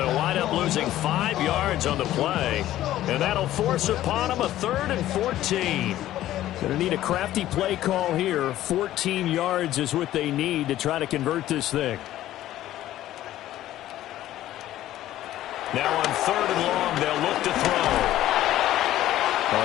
wind up losing 5 yards on the play. And that'll force upon them a 3rd and 14. Going to need a crafty play call here. 14 yards is what they need to try to convert this thing. Now on 3rd and long, they'll look to throw. A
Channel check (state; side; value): quieter; right; 13.8 dB